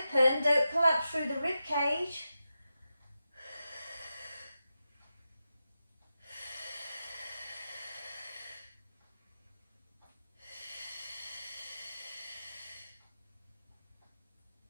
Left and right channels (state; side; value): inverted; both; correlation -0.91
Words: don't collapse through the rib cage.